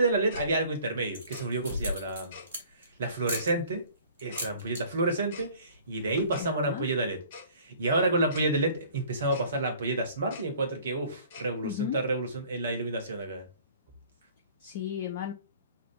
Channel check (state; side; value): inverted; both; correlation -0.52